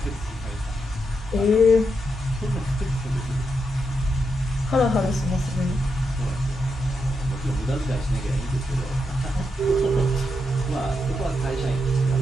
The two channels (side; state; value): both; normal; correlation 0.84